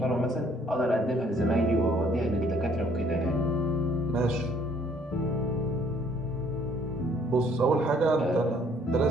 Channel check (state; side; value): normal; both; correlation 0.62